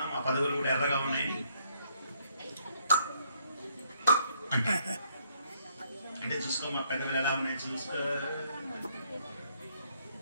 మా పెదవులు కూడా ఎర్రగా ఉన్నాయని అంటే చూసుకో మా పెద్దలు ఎలా ఉన్నాయి చూసుకో.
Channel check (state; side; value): inverted; both; correlation -0.69